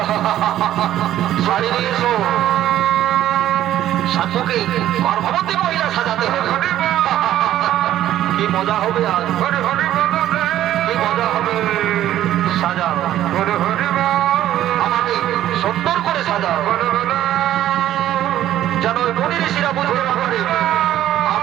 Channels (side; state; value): left; quieter; 12.6 dB